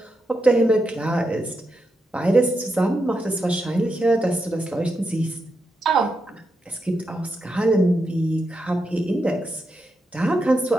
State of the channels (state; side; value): normal; both; correlation 0.85